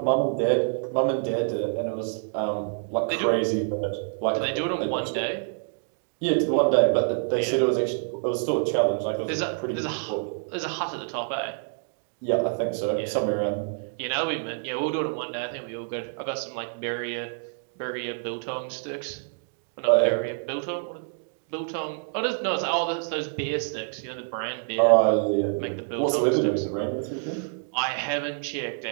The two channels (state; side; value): silent; left; 60 dB below the other